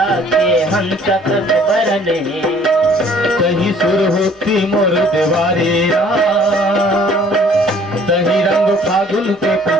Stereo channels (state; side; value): normal; both; correlation 0.56